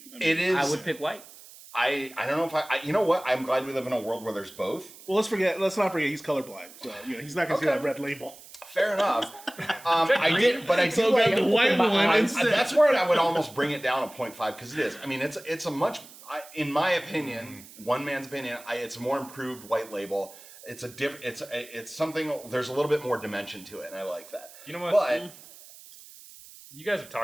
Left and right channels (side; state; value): right; noise; hiss, 19 dB below the sound